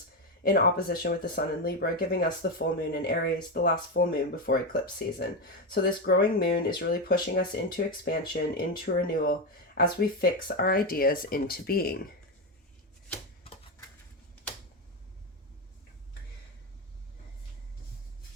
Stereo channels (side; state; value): both; normal; correlation 0.11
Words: in opposition with the sun in Libra, giving us the full moon in Aries, the last full moon before eclipse season. So this growing moon is really pushing us into expansion, into renewal, as we fix our ideas into being.